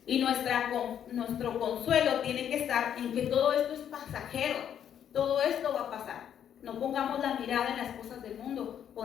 Y nuestro consuelo tiene que estar en que todo esto es pasajero. Todo esto va a pasar. No pongamos la mirada en las cosas del mundo.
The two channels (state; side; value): quieter; right; 9.3 dB